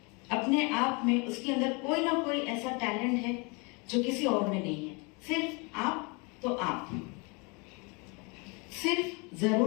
अपने आप में उसके अंदर कोई ना कोई ऐसा टैलेंट है जो किसी और में नहीं है। सिर्फ आप तो आप, सिर्फ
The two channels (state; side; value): quieter; right; 30.5 dB